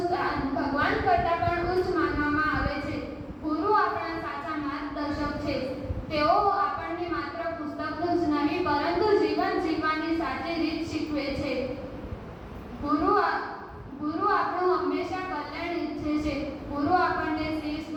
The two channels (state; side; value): identical; both; correlation 1.00